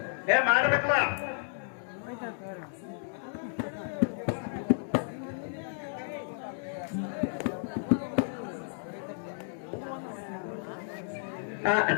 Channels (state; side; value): silent; right; digital silence